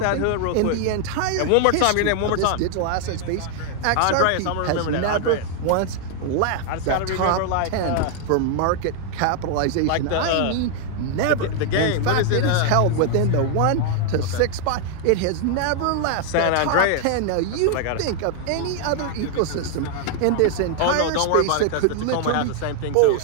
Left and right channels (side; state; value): both; different; correlation 0.00